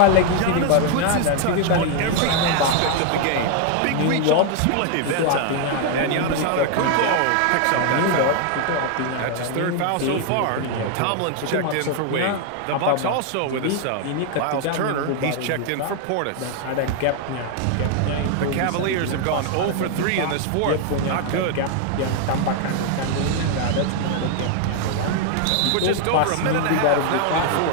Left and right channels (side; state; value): both; different; correlation 0.00